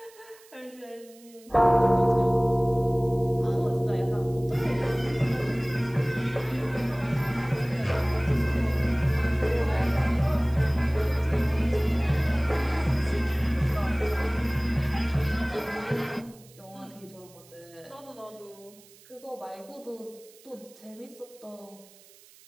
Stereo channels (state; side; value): noise; right; hiss, 25 dB below the sound